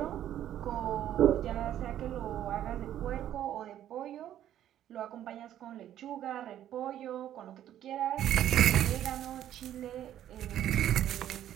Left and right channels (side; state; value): left; quieter; 11.5 dB